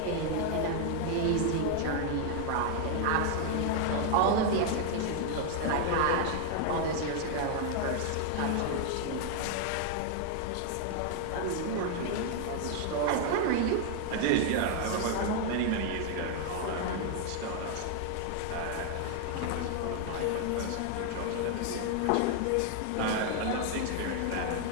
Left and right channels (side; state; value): both; different; correlation 0.00